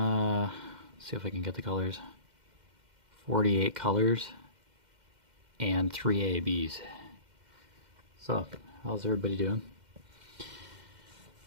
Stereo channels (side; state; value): left; late; 2.1 ms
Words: if I can get the colors. 48 colors and 3 ABs. So, how's everybody doing?